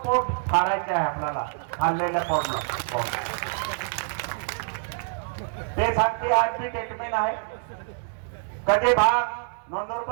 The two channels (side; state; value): left; silent; 61 dB below the other